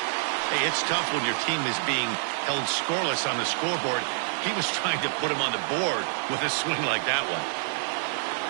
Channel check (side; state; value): left; silent; digital silence